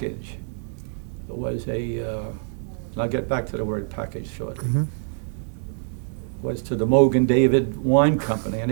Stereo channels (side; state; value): left; silent; digital silence